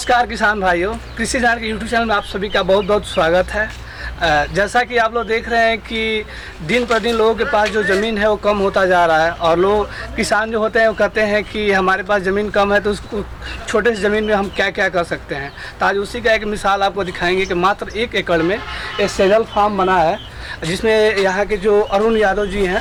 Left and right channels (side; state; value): both; identical; correlation 1.00